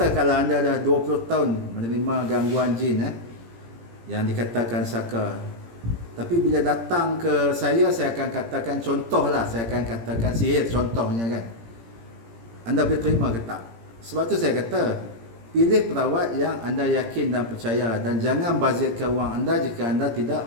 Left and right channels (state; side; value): late; left; 17 ms